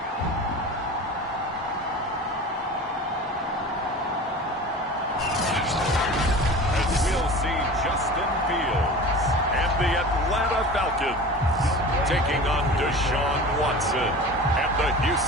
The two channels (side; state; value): both; normal; correlation 0.36